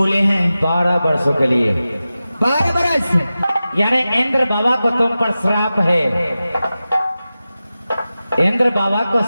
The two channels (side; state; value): both; inverted; correlation -0.94